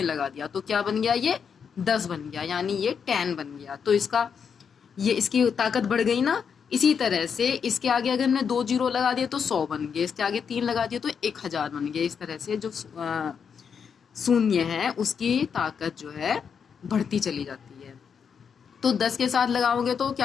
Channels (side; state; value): right; quieter; 6.8 dB